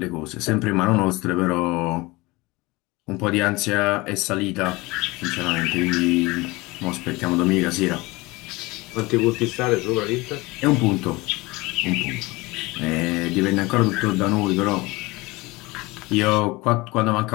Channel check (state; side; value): quieter; right; 22.7 dB